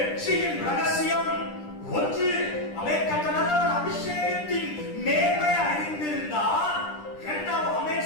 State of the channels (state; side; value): late; right; 9.9 ms